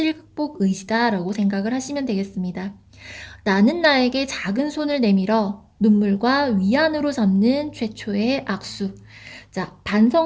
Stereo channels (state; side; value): identical; both; correlation 1.00